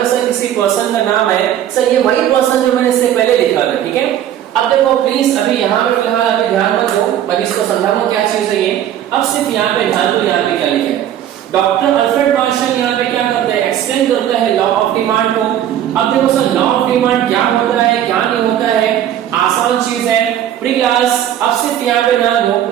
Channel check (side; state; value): left; quieter; 11.0 dB